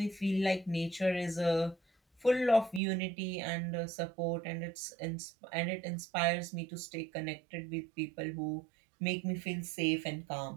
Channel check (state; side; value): drops out; left; at 2.8 s